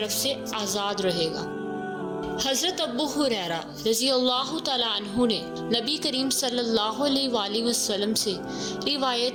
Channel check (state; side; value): identical; both; correlation 1.00